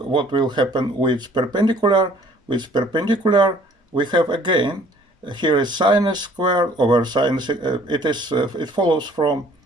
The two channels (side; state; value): both; normal; correlation 0.56